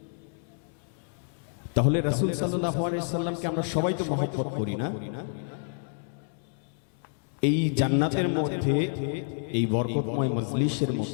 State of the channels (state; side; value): silent; right; 59 dB below the other